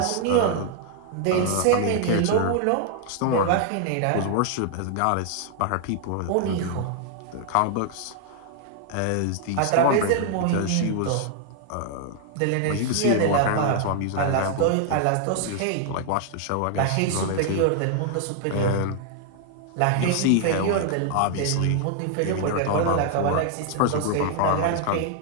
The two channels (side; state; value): both; different; correlation 0.00